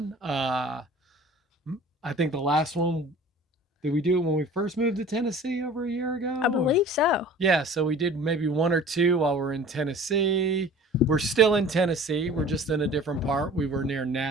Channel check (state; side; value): normal; both; correlation 0.45